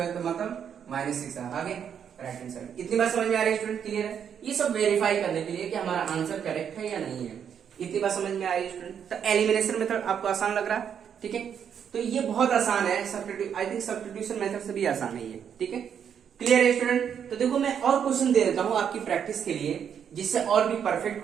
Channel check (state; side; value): quieter; left; 8.1 dB